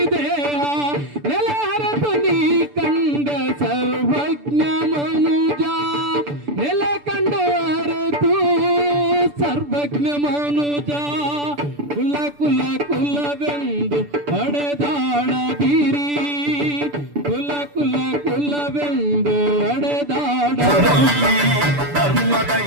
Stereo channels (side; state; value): left; late; 6.9 ms